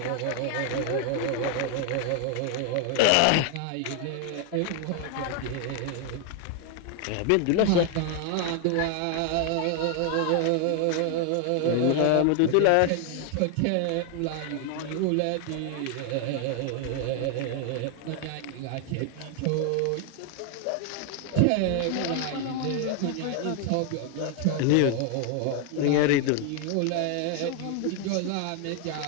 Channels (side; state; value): both; different; correlation 0.00